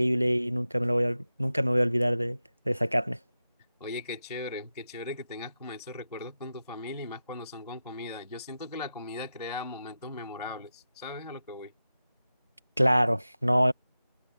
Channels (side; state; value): both; inverted; correlation -0.92